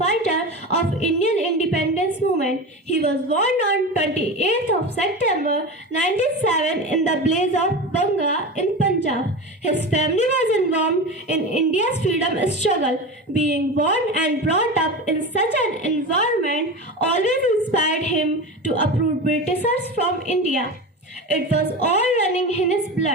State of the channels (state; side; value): normal; both; correlation 0.26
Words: of Indian independence movement. He was born on 28th of September 1907 in the blaze of Banga in Punjab. His family was involved in India's freedom struggle. Being born and brought up in such an environment always inspired him to uproot Britishers from India. It was all running in his